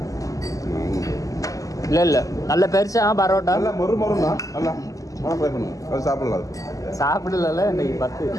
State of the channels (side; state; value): right; late; 0.16 ms